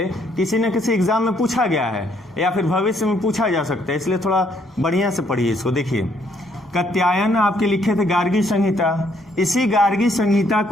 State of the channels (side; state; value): both; normal; correlation 0.69